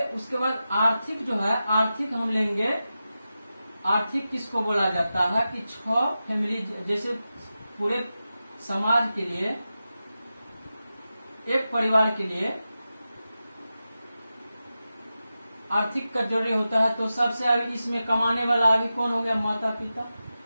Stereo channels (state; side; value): inverted; both; correlation -0.92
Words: उसके बाद आर्थिक जो है, आर्थिक हम लेंगे। आर्थिक किसको बोला जाता है कि 6 फैमिली, जैसे पूरे समाज के लिए, एक परिवार के लिए आर्थिक का जरूरी होता है। तो सबसे अभी इसमें कमाने वाला अभी कौन हो गया? माता पिता,